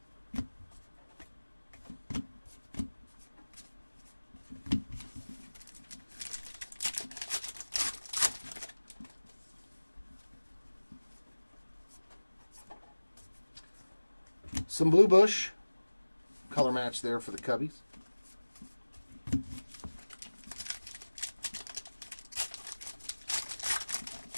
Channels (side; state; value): both; inverted; correlation -1.00